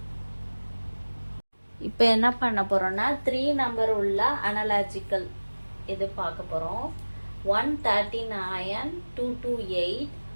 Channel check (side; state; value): both; inverted; correlation -1.00